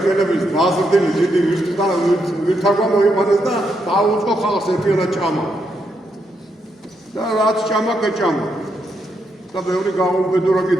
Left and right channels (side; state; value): both; normal; correlation 0.80